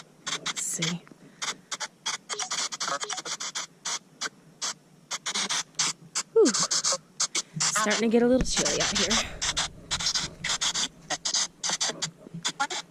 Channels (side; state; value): both; identical; correlation 1.00